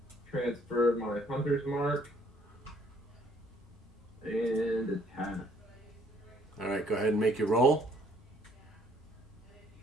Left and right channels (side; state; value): both; normal; correlation 0.63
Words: Transfer my Hunter's Mark. And attack. All right, go ahead and make your roll.